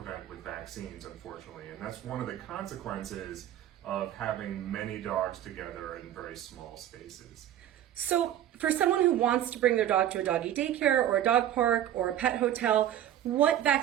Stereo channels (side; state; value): left; quieter; 11.5 dB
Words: with vaccines, unfortunately. And that's one of the consequences of having many dogs together in very small spaces. So for someone who wants to bring their dog to a doggy daycare or a dog park or a pet hotel, what